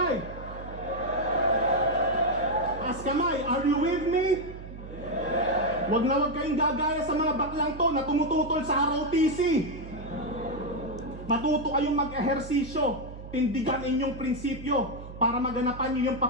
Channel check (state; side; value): noise; right; hum, 13 dB below the sound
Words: Taas kamay! Are you with me? Wag na wag kayong gagaya sa mga baklang to na tumututol sa ROTC. Matuto kayong mag-ehersisyo. Tindigan inyong prinsipyo para maganapan nyo yung